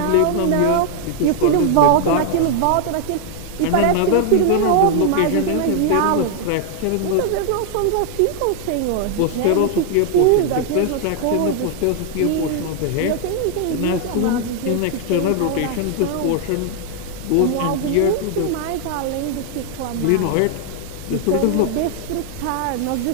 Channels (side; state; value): both; different; correlation 0.00